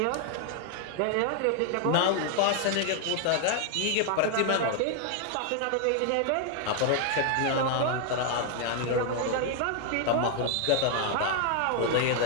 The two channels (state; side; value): different; both; correlation 0.00